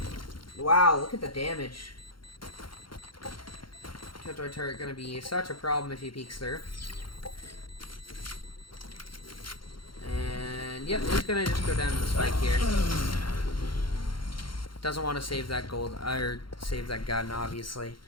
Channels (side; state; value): right; late; 0.73 ms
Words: Wow, look at the damage. Killjoy turret gonna be such a problem if he peeks through. And yep, it's gonna just go down to the spike here. Doesn't want to save that gold, or save that gun, obviously,